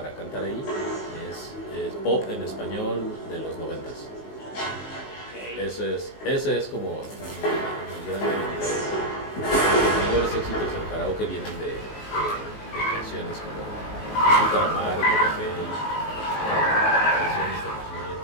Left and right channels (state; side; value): late; right; 19 ms